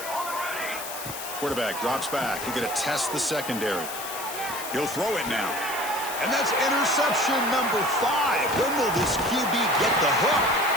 Quarterback drops back. He's going to test the secondary. He'll throw it now. And that's interception number 5. When will this QB get the hook?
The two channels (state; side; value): noise; left; hiss, 9 dB below the sound